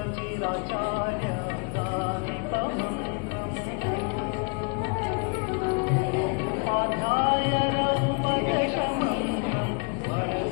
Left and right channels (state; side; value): quieter; right; 34.1 dB